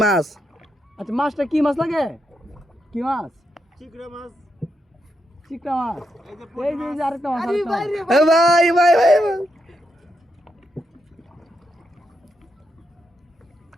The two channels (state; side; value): normal; both; correlation 0.83